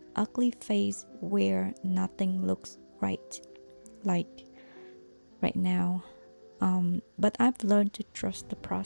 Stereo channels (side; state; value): both; inverted; correlation -1.00